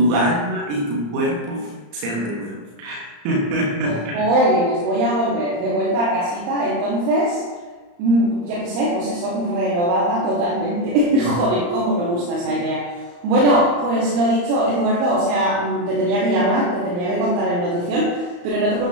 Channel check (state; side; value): late; left; 34 ms